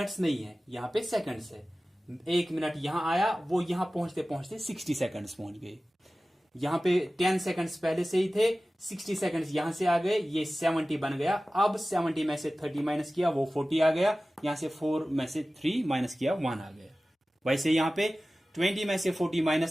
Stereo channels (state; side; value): normal; both; correlation 0.96